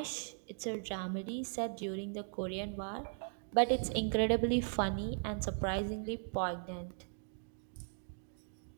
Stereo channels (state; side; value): silent; left; digital silence